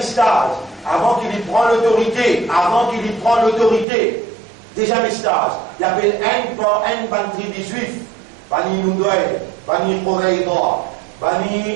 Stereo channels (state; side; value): drops out; left; at 3.9 s